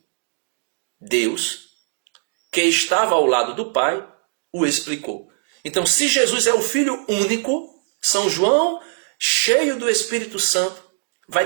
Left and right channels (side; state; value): left; silent; digital silence